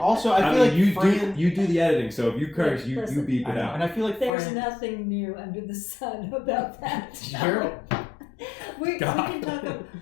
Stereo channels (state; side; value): drops out; right; at 4.3 s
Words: I feel like you do the editing. So if you curse, you beep it out. And I feel like there's nothing new under the sun about that. Sure. we can talk